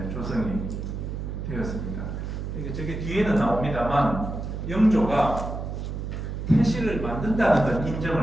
조성이 되었습니다. 그러니까 저게 뒤에는 나옵니다만 영조가 태실을 만든다는 건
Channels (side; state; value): right; noise; hum, 5 dB below the sound